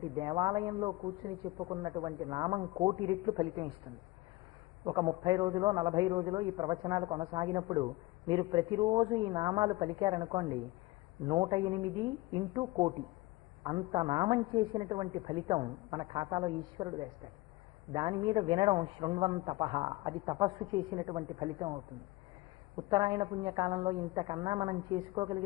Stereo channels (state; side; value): quieter; right; 20.5 dB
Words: దేవాలయంలో కూర్చుని చెప్పుకున్నటువంటి నామం 1,000,000 రెట్లు ఫలితం ఇస్తుంది. ఒక 30 రోజులో 40 రోజులో ఈ ప్రవచనాలు కొనసాగినప్పుడు మీరు ప్రతిరోజు ఈ నామాలు పలికారనుకోండి, 108 ఇంటూ 1,000,000 అంత నామం చేసినటువంటి ఫలితం మన ఖాతాలో ఈశ్వరుడు వేస్తాడు. దాని మీద వినడం శృణ్వం తపః, అది తపస్సు చేసినటువంటి ఫలితం అవుతుంది. ఉత్తరాయణ పుణ్యకాలంలో ఇంతకన్నా మనం